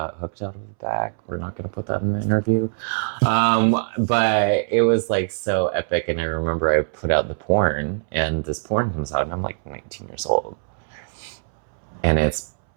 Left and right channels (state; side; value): silent; left; 64 dB below the other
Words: hooked out of the back. We're not going to put that in the interview. But it was like so epic. And I remember I put out the porn, and this porn comes out, and I'm like 19 years old. And it's